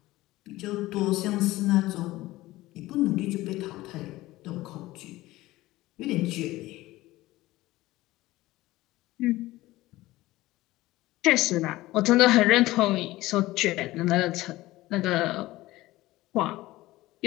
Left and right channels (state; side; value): quieter; right; 17.8 dB